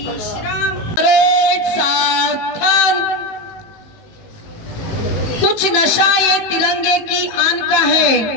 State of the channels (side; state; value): right; late; 19 ms